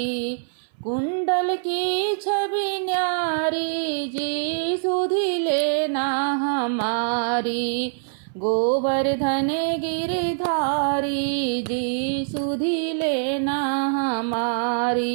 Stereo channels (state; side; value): silent; left; 61 dB below the other